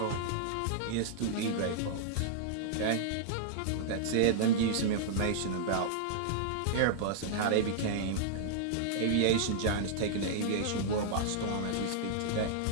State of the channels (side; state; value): both; different; correlation -0.01